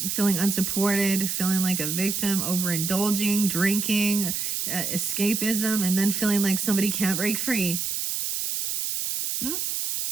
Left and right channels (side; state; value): right; noise; hiss, 1 dB below the sound